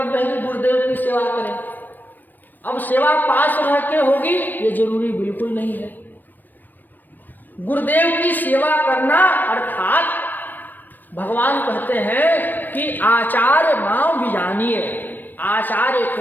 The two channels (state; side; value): late; right; 0.090 ms